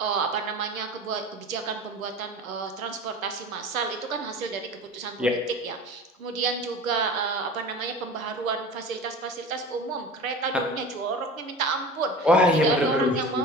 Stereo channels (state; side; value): normal; both; correlation 0.36